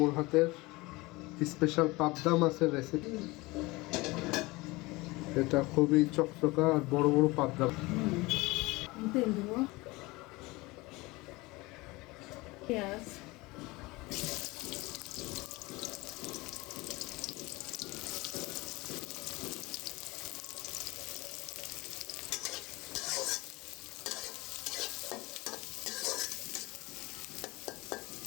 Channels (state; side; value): quieter; right; 22.6 dB